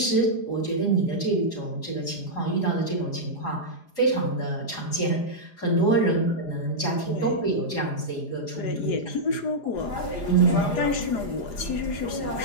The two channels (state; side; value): late; right; 4.9 ms